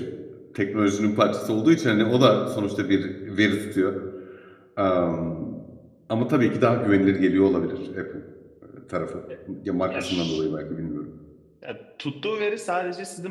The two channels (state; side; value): identical; both; correlation 1.00